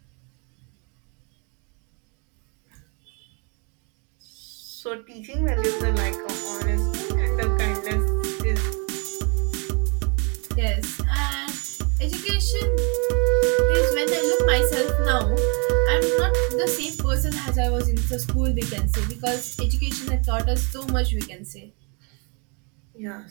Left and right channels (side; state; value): left; quieter; 34.7 dB